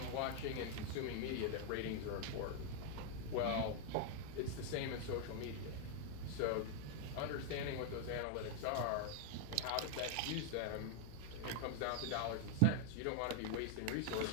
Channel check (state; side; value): different; both; correlation 0.00